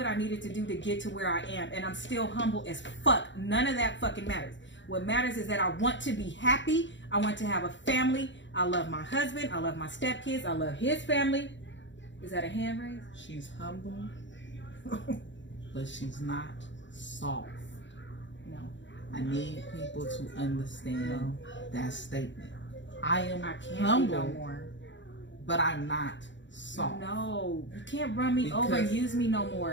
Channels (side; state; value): right; late; 0.54 ms